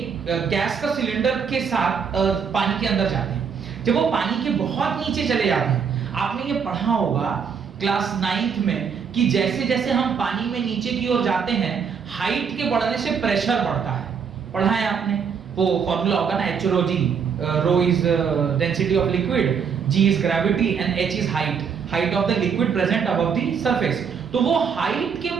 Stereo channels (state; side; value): quieter; left; 6.6 dB